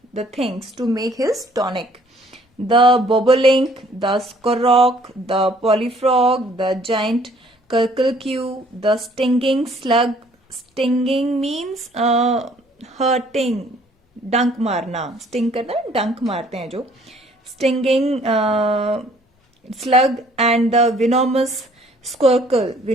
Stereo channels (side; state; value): both; normal; correlation 0.59